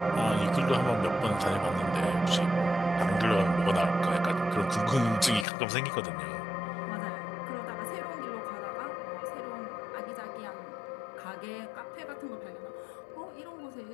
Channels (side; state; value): right; drops out; at 5.5 s